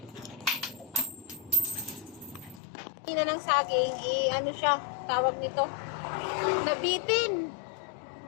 Na ng saging, ano siya, tawag nito, nabitin.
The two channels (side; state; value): right; drops out; at 2.6 s